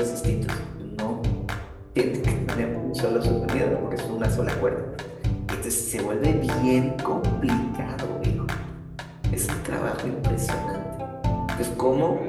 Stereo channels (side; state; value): both; identical; correlation 1.00